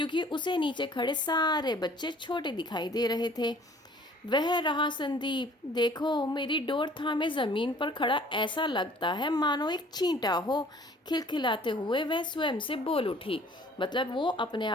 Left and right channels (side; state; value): both; normal; correlation 0.53